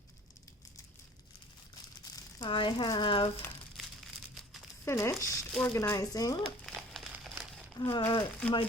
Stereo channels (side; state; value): both; normal; correlation 0.48